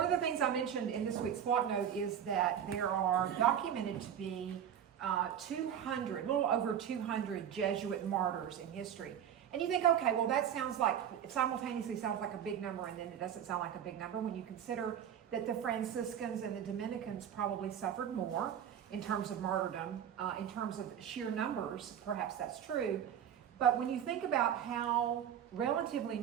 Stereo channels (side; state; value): left; quieter; 9.3 dB